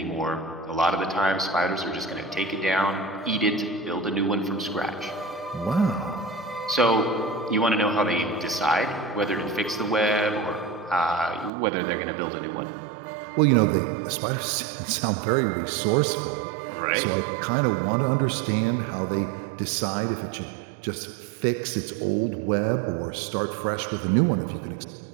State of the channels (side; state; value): left; drops out; at 11.5 s